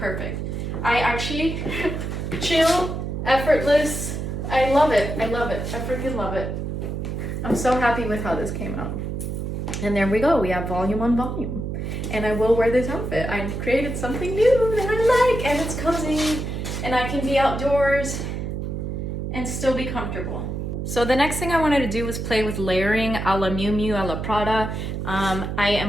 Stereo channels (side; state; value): right; noise; hum, 4 dB below the sound